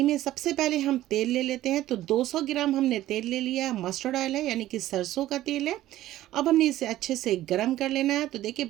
में सबसे पहले हम तेल ले लेते हैं। तो 200 ग्राम हमने तेल ले लिया है, मस्टर्ड ऑयल है यानी कि सरसों का तेल है। अब हमने इसे अच्छे से गरम कर लेना है। तो देखिए,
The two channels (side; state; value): left; quieter; 14.5 dB